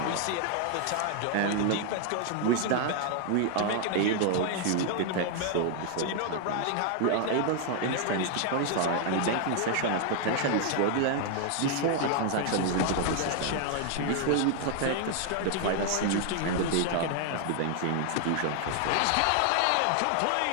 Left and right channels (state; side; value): different; both; correlation 0.00